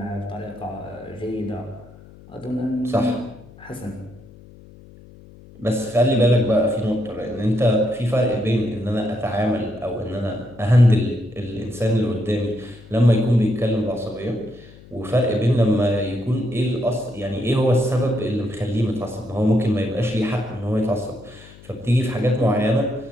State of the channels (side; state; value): left; noise; hum, 21 dB below the sound